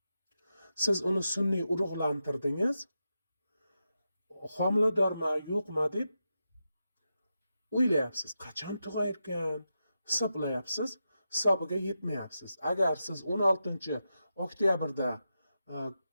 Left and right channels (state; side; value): inverted; both; correlation -0.88